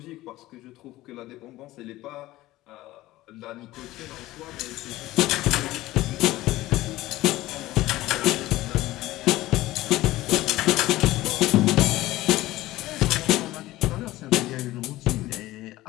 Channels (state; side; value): quieter; right; 17.1 dB